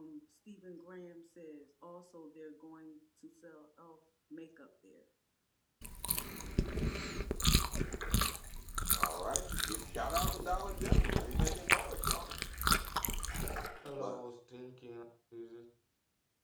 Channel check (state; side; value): identical; both; correlation 1.00